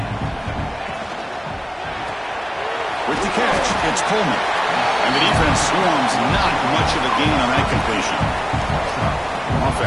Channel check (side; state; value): both; identical; correlation 1.00